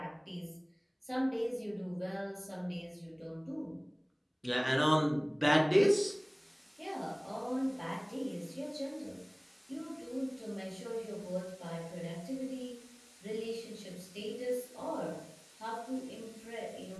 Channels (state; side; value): identical; both; correlation 1.00